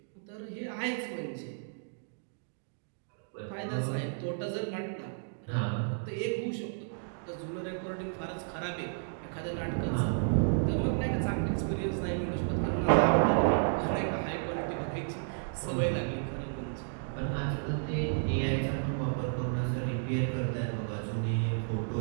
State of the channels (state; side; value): silent; left; digital silence